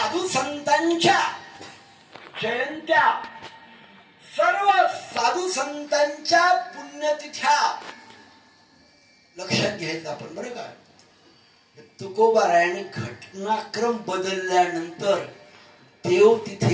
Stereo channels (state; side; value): identical; both; correlation 1.00